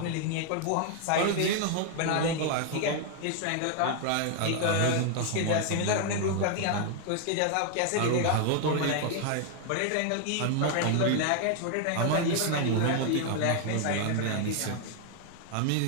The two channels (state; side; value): different; both; correlation 0.00